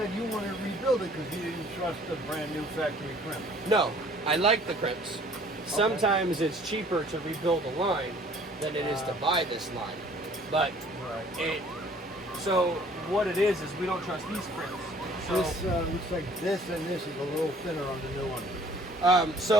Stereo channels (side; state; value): both; normal; correlation 0.55